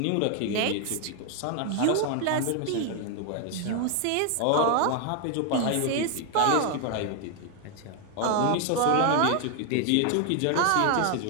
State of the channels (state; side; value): different; both; correlation 0.00